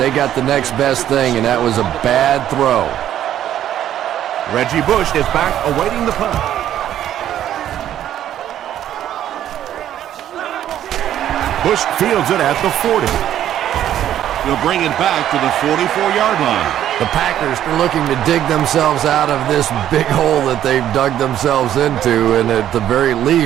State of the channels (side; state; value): left; quieter; 11.3 dB